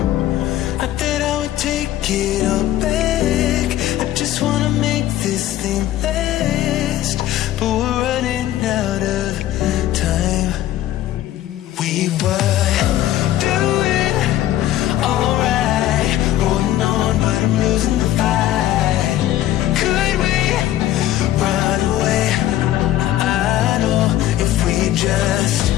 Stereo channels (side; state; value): right; quieter; 13.4 dB